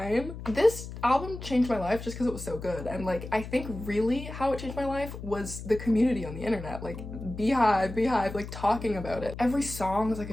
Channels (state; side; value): noise; left; hum, 10 dB below the sound